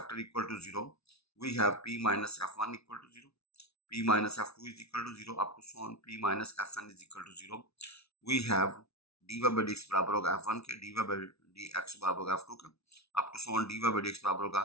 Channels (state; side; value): late; right; 0.79 ms